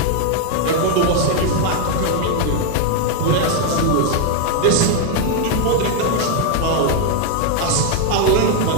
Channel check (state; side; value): different; both; correlation 0.00